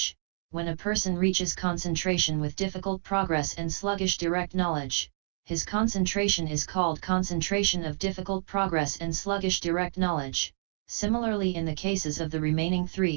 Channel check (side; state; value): left; silent; digital silence